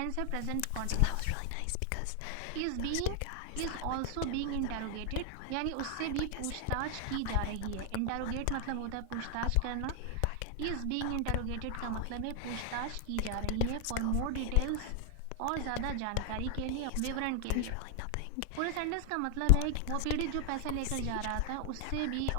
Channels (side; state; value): both; different; correlation 0.00